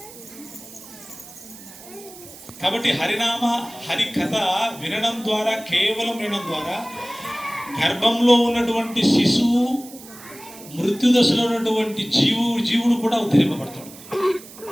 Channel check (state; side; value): noise; right; hiss, 18 dB below the sound